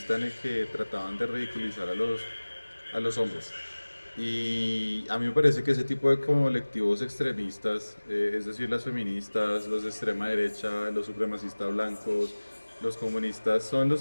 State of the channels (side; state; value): both; inverted; correlation -1.00